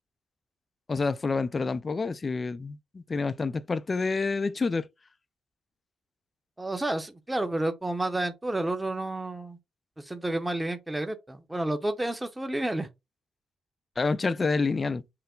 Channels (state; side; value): normal; both; correlation 0.93